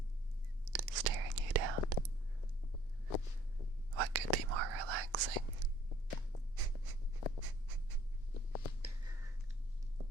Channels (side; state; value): both; normal; correlation 0.59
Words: Staring you down. What could be more relaxing?